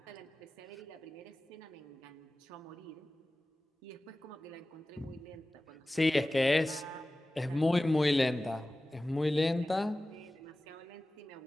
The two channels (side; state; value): both; normal; correlation 0.96